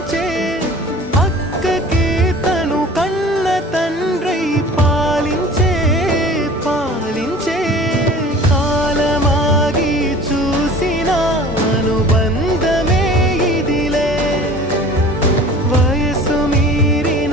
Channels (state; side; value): normal; both; correlation 0.43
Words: అక్కకే తను కన్న తండ్రై పాలించే పాలించే కాలమాగి చూసిన అనుబంధమే ఇదిలే వయసు